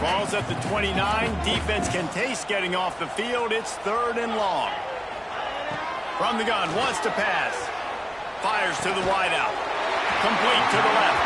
Ball's at the 29. Defense can taste getting off the field. It's 3rd and long. From the gun, wants to pass. Fires to the wideout. Complete to the left.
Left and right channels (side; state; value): both; identical; correlation 1.00